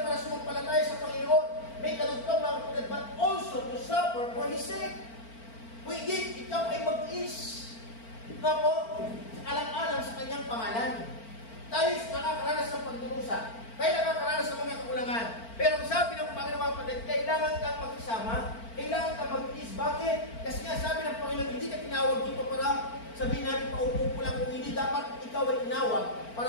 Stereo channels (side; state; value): right; late; 4.4 ms